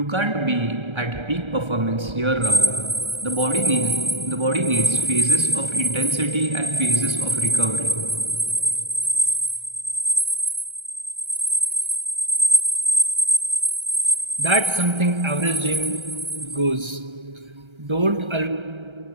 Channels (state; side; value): late; left; 1.3 ms